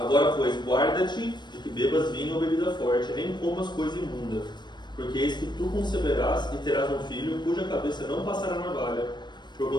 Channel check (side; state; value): right; late; 0.22 ms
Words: pois, guarda-te de que bebas vinho ou bebida forte, nem comas coisa imunda, porque eis que tu conceberás e terás um filho, cuja cabeça não passará navalha,